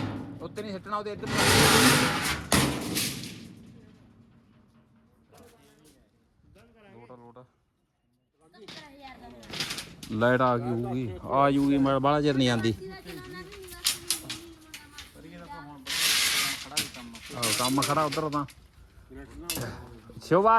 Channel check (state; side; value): identical; both; correlation 1.00